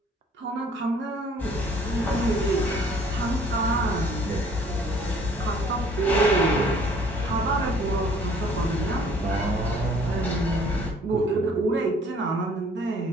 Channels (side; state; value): both; normal; correlation 0.57